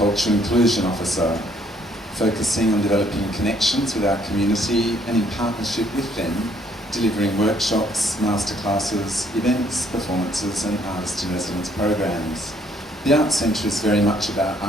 Inclusion Officer, focusing on developing connections with our community and in partnership with them, delivering workshops, masterclasses, events, performances and artist-in-residence programs. The Arts Centre is very much about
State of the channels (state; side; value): normal; both; correlation 0.66